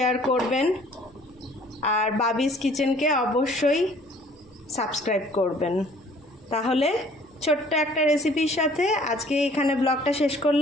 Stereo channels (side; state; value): both; normal; correlation 0.55